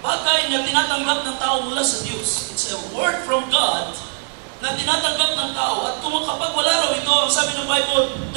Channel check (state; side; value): silent; left; 55 dB below the other